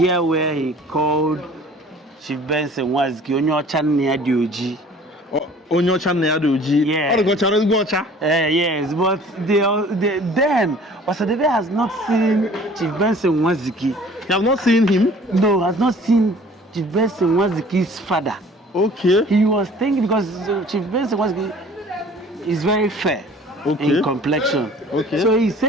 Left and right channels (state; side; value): normal; both; correlation 0.49